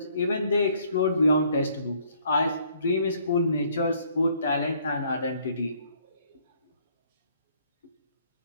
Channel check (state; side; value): inverted; both; correlation -0.64